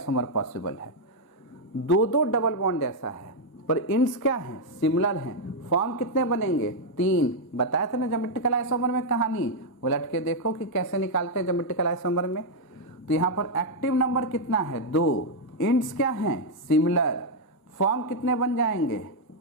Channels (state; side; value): late; right; 1.0 ms